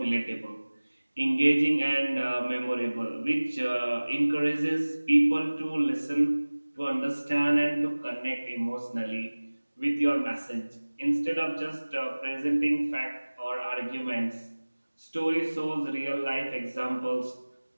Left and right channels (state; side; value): inverted; both; correlation -1.00